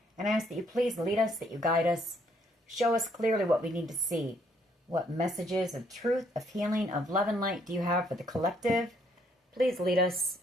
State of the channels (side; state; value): both; normal; correlation 0.68